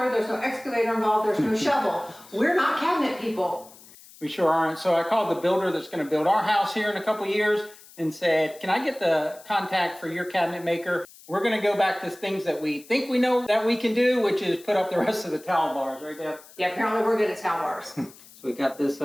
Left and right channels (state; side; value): noise; left; hiss, 22 dB below the sound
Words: there's no excavator involved, there's no shovel. We're not cabinet people. We sure aren't. So I called the builder that's going to build our house here in a couple years and said, can I get the contact for your cabinet maker? We're going to go back to things that we think we know that we can do, which is put up the rest of the towel bars, right, Deb? Yeah, apparently we're good at towel bars. So we got this